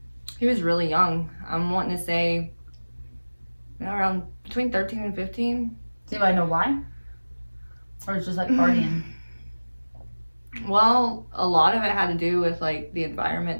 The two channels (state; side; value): inverted; both; correlation -1.00